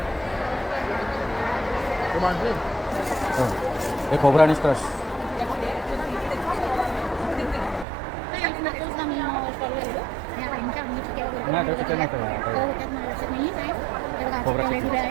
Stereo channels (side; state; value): left; drops out; at 7.9 s